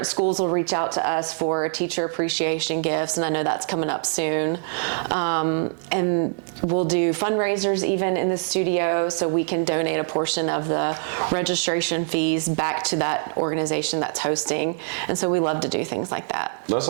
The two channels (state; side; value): silent; left; 63 dB below the other